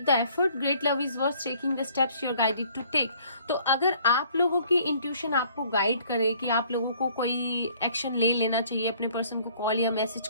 the effort, great love is worth taking the steps you are guided to take. तो अगर आप लोगों की इंट्यूशन आपको गाइड करे कि आप लोगों को कोई एक्शन ले लेना चाहिए, अपने पर्सन को कॉल या मैसेज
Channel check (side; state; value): both; inverted; correlation -0.58